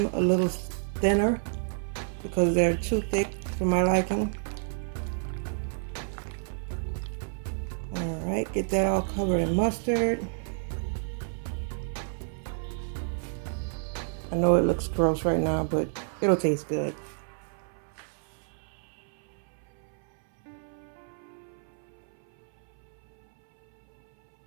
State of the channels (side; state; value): left; silent; 58 dB below the other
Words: a little thinner because they're too thick for my liking. Alright, get that all covered in mustard. I know it looks gross right now, but it'll taste good.